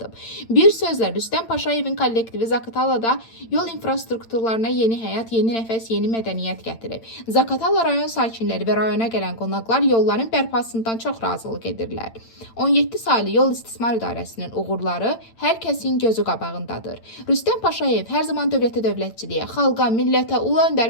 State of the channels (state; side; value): late; right; 8.9 ms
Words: Bir sözlə Rüstəm Paşayevin kollektivi Zaqatalada yol infrastrukturlarına yeni həyat, yeni nəfəs, yeni mədəniyyət gətirib. Zaqatala rayon sakinləri və rayona gələn qonaqlar yolların bərpasından çox razılıq edirlər. 17 saylı yol istismar idarəsinin uğurları hər kəsin gözü qabağındadır. Rüstəm Paşayev hər zaman dövlətə dövlətçiliyə, xalqa, millətə, ulu